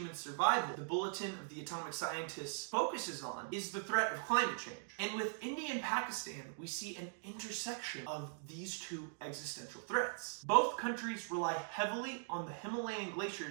survival, the Bulletin of the Atomic Scientists focuses on, is the threat of climate change. And with India and Pakistan, we see an intersection of these two existential threats. Both countries rely heavily on the Himalayan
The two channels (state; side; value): silent; left; digital silence